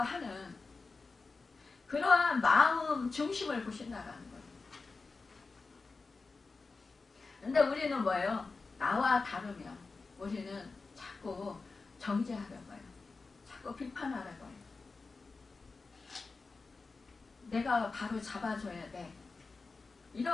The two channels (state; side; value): quieter; right; 4.1 dB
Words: 하는 그러한 마음 중심을 보신다라는 거예요. 근데 우리는 뭐예요? 나와 다르면 우리는 자꾸 정죄하려고 해요. 자꾸 비판하려고 해요. 내가 바로 잡아줘야 돼.